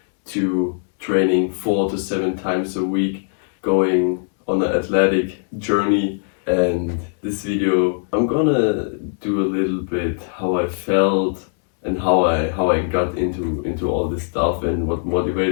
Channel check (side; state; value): right; silent; 66 dB below the other